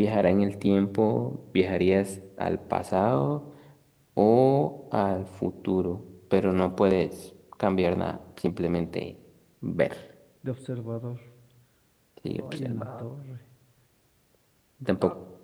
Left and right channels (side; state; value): both; identical; correlation 1.00